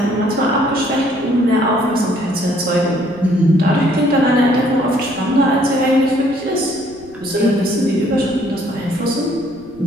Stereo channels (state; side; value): noise; right; rumble, 26 dB below the sound